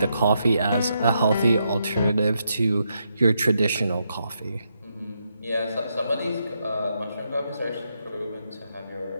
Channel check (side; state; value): both; inverted; correlation -0.81